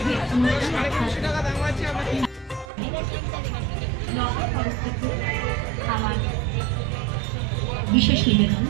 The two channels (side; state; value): left; drops out; at 2.7 s